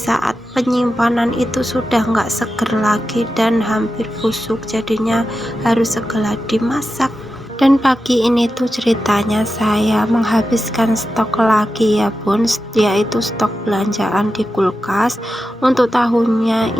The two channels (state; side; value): normal; both; correlation 0.91